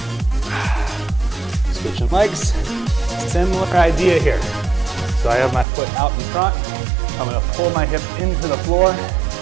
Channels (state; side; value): drops out; left; at 5.7 s